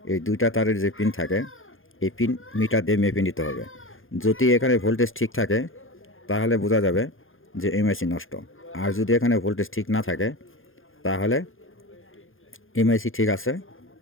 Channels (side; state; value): right; late; 0.59 ms